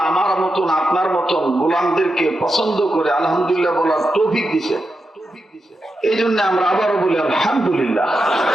আমার মতন আপনার মতন গোলামদেরকে পছন্দ করে আলহামদুলিল্লাহ বলার তৌফিক দিছে। এই জন্য আমরা আবারও বলি আলহামদুলিল্লাহ।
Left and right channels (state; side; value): normal; both; correlation 0.88